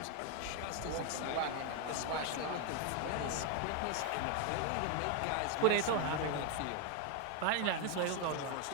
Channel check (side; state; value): both; different; correlation 0.01